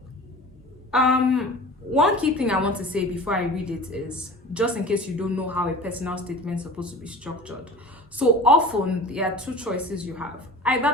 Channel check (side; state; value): both; normal; correlation 0.38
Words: one key thing I want to say before I read it is, just in case you don't know how a personal statement is supposed to be structured. So often there are two choices you have.